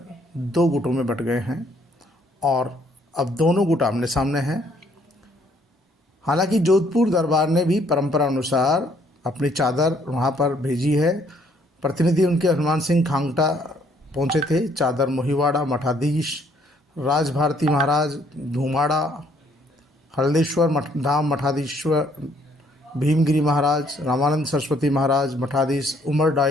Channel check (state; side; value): normal; both; correlation 0.65